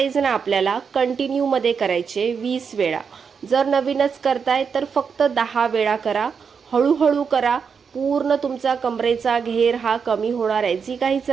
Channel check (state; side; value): quieter; left; 6.2 dB